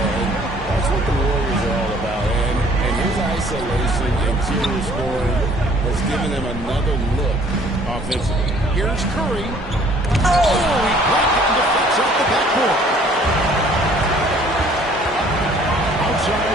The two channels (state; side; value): normal; both; correlation 0.57